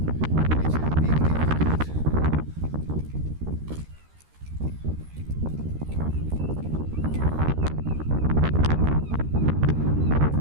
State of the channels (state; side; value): late; left; 13 ms